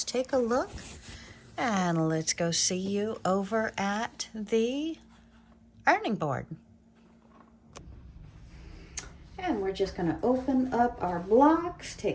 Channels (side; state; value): both; identical; correlation 1.00